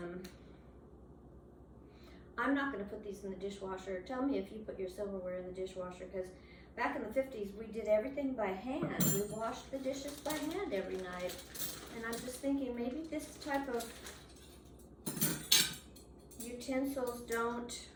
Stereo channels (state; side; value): identical; both; correlation 1.00